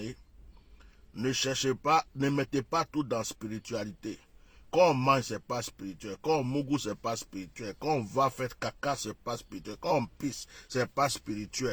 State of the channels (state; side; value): identical; both; correlation 1.00